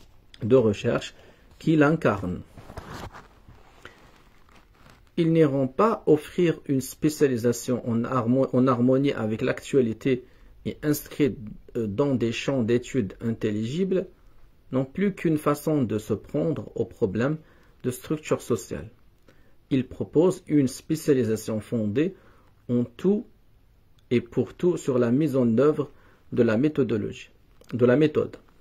de recherche qui l'incarne. Ils n'iront pas offrir une spécialisation en harmonie avec l'actualité et inscrite dans des champs d'études intelligibles, non plus qu'une façon de se prendre aux problèmes de structure sociale. Ils proposent une spécialisation fondée en tout et pour tout sur la mise en œuvre de la méthode,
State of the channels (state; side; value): identical; both; correlation 1.00